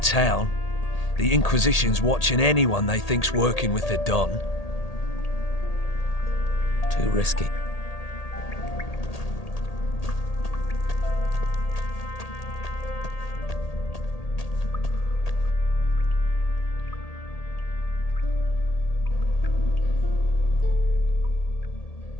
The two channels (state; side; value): late; right; 1.8 ms